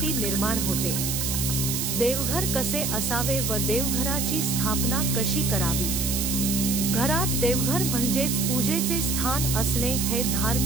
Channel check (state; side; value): noise; right; hiss, 1 dB below the sound